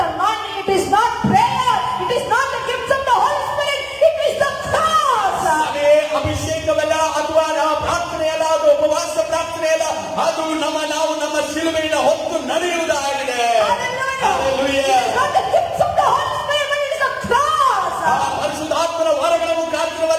anointing, it is not prayer, it is not the gifts of the Holy Spirit, it is the cross. ಅದೇ ಅಭಿಷೇಕವಲ್ಲ, ಅಥವಾ ಪ್ರಾರ್ಥನೆ ಅಲ್ಲ, ಅದು ಉಪವಾಸ ಪ್ರಾರ್ಥನೆ ಅಲ್ಲ, ಅದು ನಾವು ನಮ್ಮ ಶಿಲುಬೆಯನ್ನು ಹೊತ್ತು ನಡೆಯುವುದಾಗಿದೆ. Hallelujah. It is not the gifts of the Holy Spirit, but it is the cross. ಪರಿಶುದ್ಧಾತ್ಮನ ವರಗಳ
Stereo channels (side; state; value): both; identical; correlation 1.00